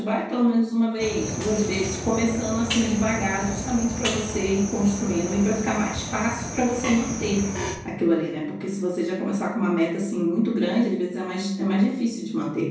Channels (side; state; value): both; identical; correlation 1.00